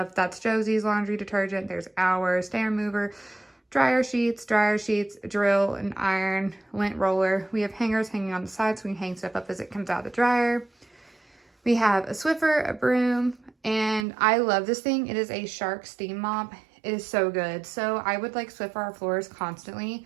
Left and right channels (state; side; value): drops out; left; at 14.1 s